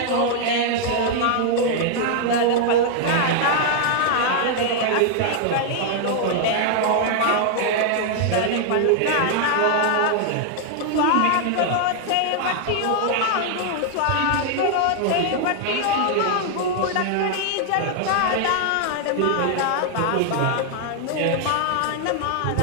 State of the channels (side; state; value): both; different; correlation 0.00